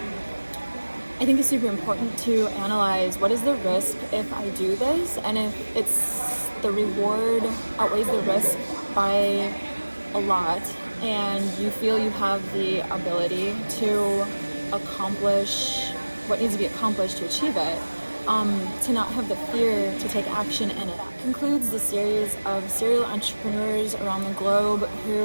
I think it's super important to analyze. What is the risk if I do this? And if it's the reward outweighs the risk by a lot, and you feel you have the ability to accomplish what needs to be accomplished to achieve it, to not have the fear to take action in it. That concludes the series of serial entrepreneurs around the globe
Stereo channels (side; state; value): both; inverted; correlation -1.00